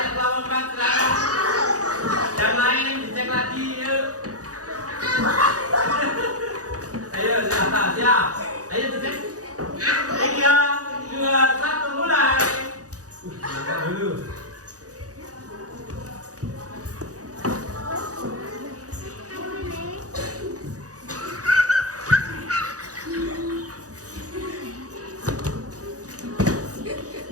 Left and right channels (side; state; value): left; late; 0.67 ms